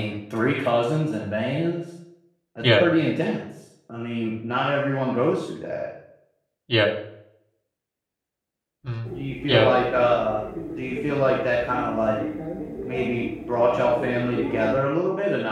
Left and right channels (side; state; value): both; identical; correlation 1.00